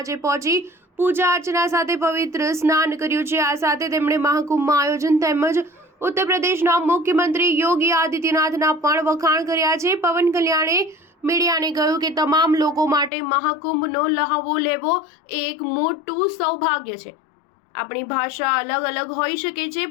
પહોંચી પૂજા અર્ચના સાથે પવિત્ર સ્નાન કર્યું છે. આ સાથે તેમણે મહાકુંભમાં આયોજન તેમજ ઉત્તર પ્રદેશના મુખ્યમંત્રી યોગી આદિત્યનાથના પણ વખાણ કર્યા છે. પવન કલ્યાણે મીડિયાને કહ્યું કે તમામ લોકો માટે મહાકુંભનો લહાવો લેવો એ એક મોટું સૌભાગ્ય છે. આપણી ભાષા અલગ હોઈ શકે છે,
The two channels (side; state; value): right; drops out; at 13.1 s